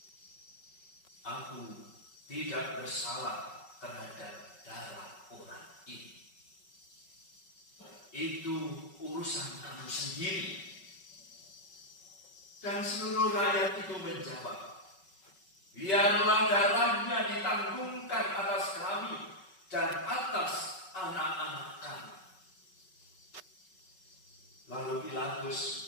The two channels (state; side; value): late; right; 5.3 ms